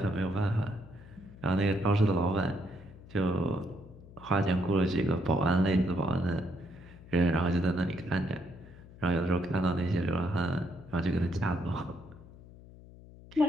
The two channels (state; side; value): noise; left; hum, 19 dB below the sound